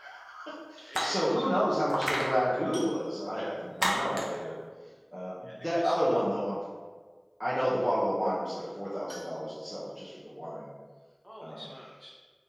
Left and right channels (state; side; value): identical; both; correlation 1.00